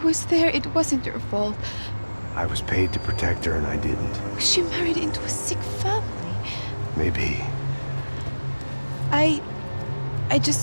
there. It wasn't your fault. I was paid to protect her and I didn't. She married into a sick family. Maybe. I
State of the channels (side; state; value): both; inverted; correlation -1.00